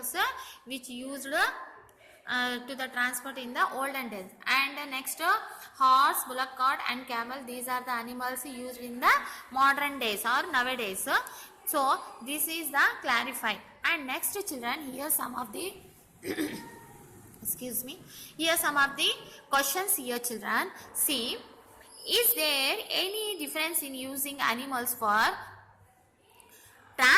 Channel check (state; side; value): identical; both; correlation 1.00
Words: which used to the transport in the olden days. And next, horse, bullock cart, and camel. These are the animals used in the modern days or nowadays. So this is the clarify. And next, children, here some of the excuse me. Here some of the questions here, children. See, is there any difference in using animals for